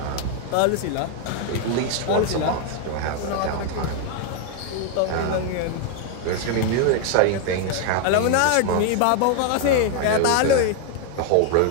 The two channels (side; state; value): both; different; correlation 0.00